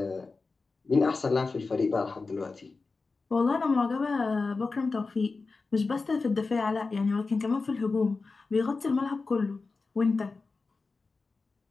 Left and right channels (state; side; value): quieter; right; 4.0 dB